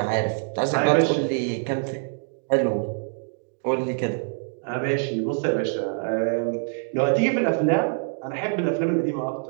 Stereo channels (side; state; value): left; silent; digital silence